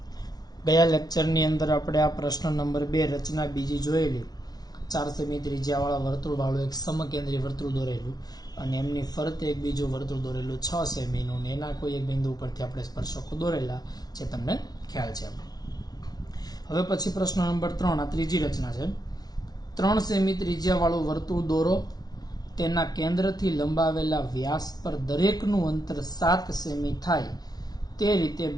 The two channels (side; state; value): right; late; 0.19 ms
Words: गया लेक्चरनी अंदर આપણે આ પ્રશ્ન નંબર 2 રચના બીજી જોયેલી 4 સેમી ત્રિજ્યાવાળા વર્તુળવાળું એક સમકેન્દ્રી વર્તુળ દોરેલું અને એમની ફરતે એક બીજું વર્તુળ દોરેલું 6 સેમીનું ને એના કોઈ એક બિંદુ ઉપરથી આપણે સ્પર્શકો દોરેલા જે તમને ખ્યાલ છે. હવે પછી પ્રશ્ન નંબર 3 આ ત્રીજી રચના છે. 3 સેમી ત્રિજ્યાવાળું વર્તુળ દોરો, તેના કેન્દ્રથી લંબાવેલા વ્યાસ પર દરેકનું અંતર 7 સેમી થાય તે રીતે